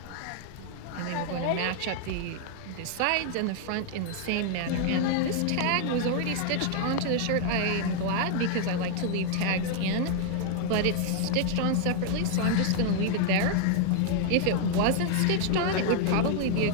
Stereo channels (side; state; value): both; different; correlation 0.00